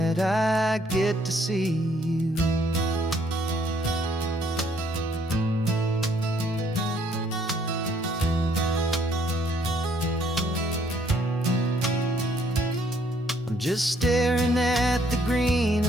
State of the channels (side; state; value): both; normal; correlation 0.66